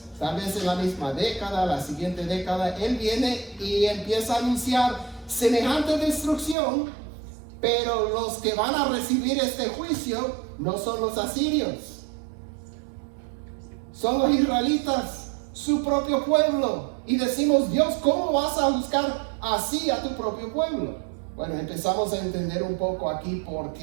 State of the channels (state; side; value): drops out; left; at 6.6 s